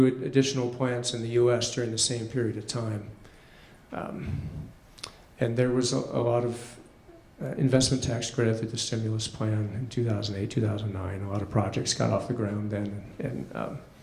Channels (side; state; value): both; identical; correlation 1.00